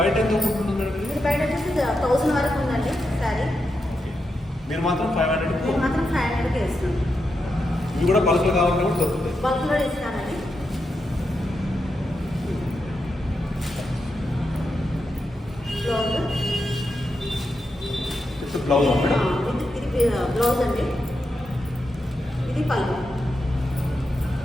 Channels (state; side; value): normal; both; correlation 0.86